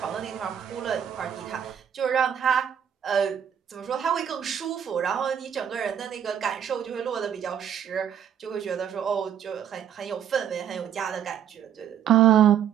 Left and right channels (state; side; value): quieter; left; 9.2 dB